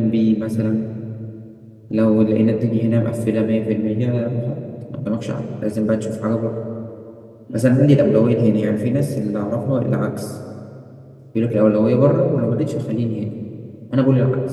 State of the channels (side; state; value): both; identical; correlation 1.00